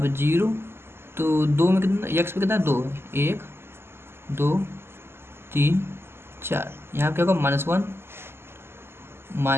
0, तो 2 में कितना, x पे कितना 2 है, 1 2 3 4, यहाँ क्या होगा, -1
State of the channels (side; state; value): left; late; 0.12 ms